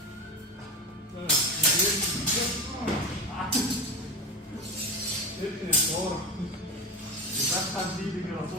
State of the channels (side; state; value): both; normal; correlation 0.22